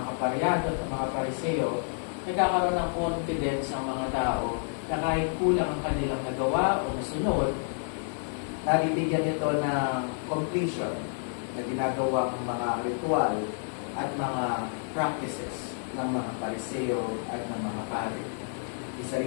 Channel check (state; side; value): silent; right; 58 dB below the other